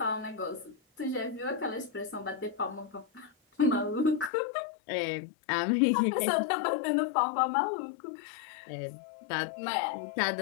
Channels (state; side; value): drops out; right; at 4.3 s